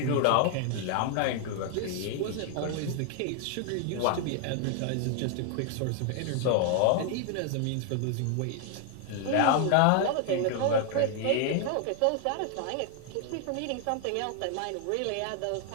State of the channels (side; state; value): both; different; correlation 0.00